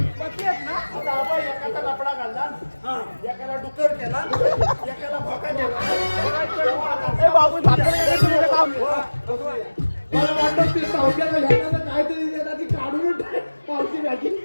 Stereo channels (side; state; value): both; inverted; correlation -1.00